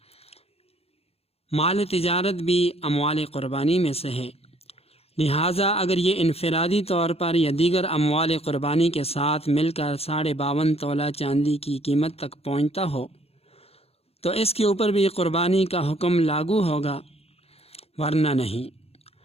مال تجارت بھی اموال قربانی میں سے ہے، لہٰذا اگر یہ انفرادی طور پر یا دیگر اموال قربانی کے ساتھ مل کر 52.5 تولہ چاندی کی قیمت تک پہنچتا ہو تو اس کے اوپر بھی قربانی کا حکم لاگو ہوگا، ورنہ نہیں۔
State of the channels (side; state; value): right; late; 0.29 ms